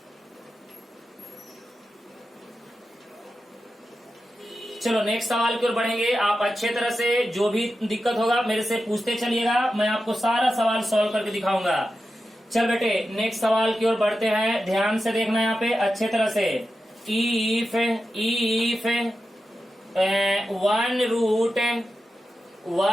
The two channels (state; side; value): normal; both; correlation 0.91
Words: चलो नेक्स्ट सवाल की ओर बढ़ेंगे। आप अच्छे तरह से जो भी दिक्कत होगा मेरे से पूछते चलिएगा, मैं आपको सारा सवाल सॉल्व करके दिखाऊंगा। चल बेटे नेक्स्ट सवाल की ओर बढ़ते हैं, ध्यान से देखना यहाँ पे अच्छे तरह से। If one